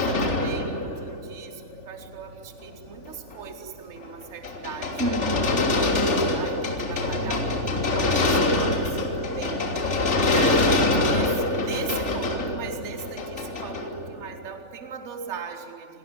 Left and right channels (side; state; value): left; late; 3.4 ms